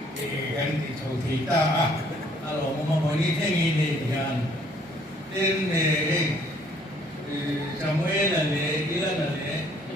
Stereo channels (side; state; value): both; normal; correlation 0.62